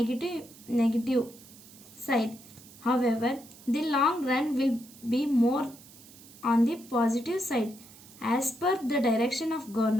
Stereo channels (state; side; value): noise; right; hiss, 21 dB below the sound